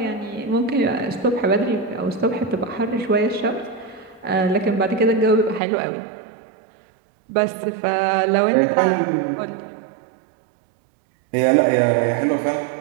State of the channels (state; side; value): drops out; left; at 5.6 s